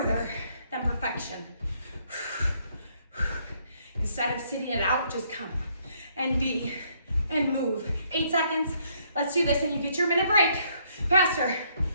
than perfection. Instead of sitting it out, just come and be and move. 8 seconds. Let's do this, and you get your minute break. Faster.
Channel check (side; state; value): both; inverted; correlation -0.69